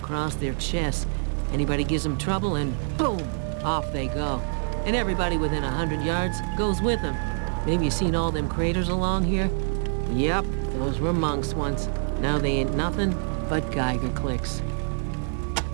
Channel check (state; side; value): silent; left; digital silence